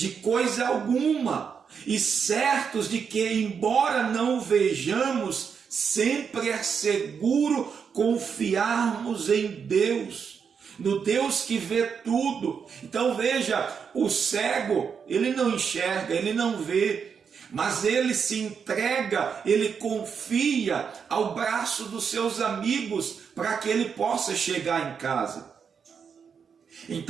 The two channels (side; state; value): left; quieter; 6.5 dB